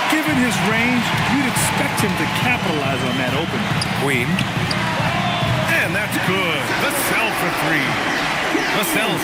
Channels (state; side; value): identical; both; correlation 1.00